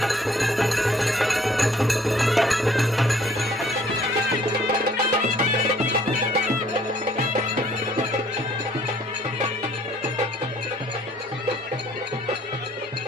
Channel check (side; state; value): both; normal; correlation 0.60